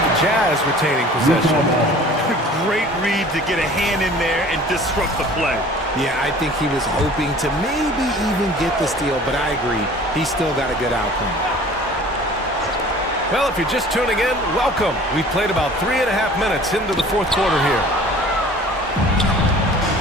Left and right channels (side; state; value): both; normal; correlation 0.47